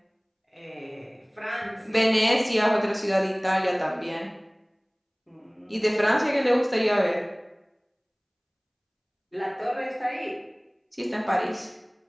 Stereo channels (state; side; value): identical; both; correlation 1.00